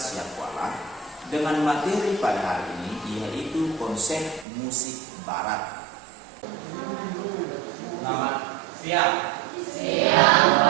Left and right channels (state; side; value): drops out; left; at 4.5 s